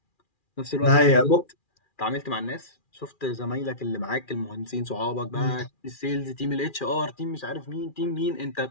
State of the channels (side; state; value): right; late; 2.4 ms